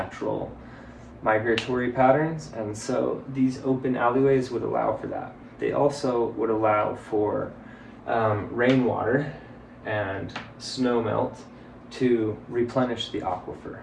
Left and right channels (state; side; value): identical; both; correlation 1.00